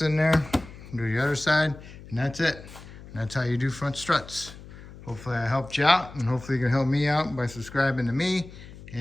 in there, do the other side, and that's it. And that's how you do front struts. Hopefully I helped you out, and hopefully you can help me out by subscribing to me,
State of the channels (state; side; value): noise; left; hum, 17 dB below the sound